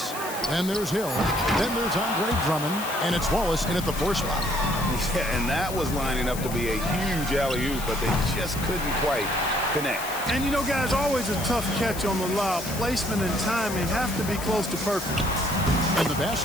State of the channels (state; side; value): noise; left; hiss, 10 dB below the sound